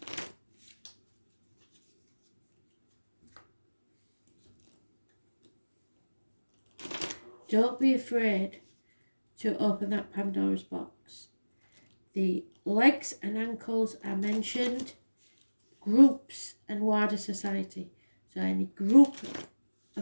Don't be afraid to open that Pandora's box. The legs and ankles are mentioned. Groups and wider society. So any group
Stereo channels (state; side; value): inverted; both; correlation -1.00